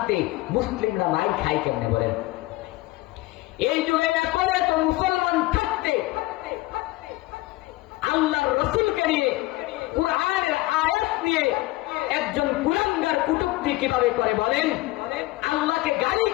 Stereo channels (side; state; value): right; quieter; 19.6 dB